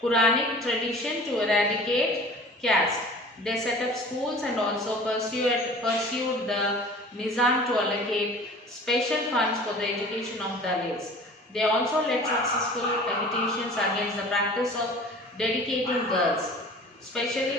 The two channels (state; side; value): normal; both; correlation 0.43